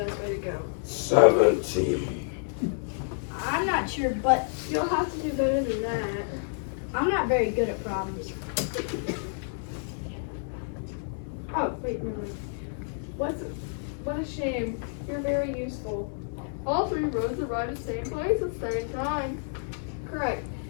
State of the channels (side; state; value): right; silent; 58 dB below the other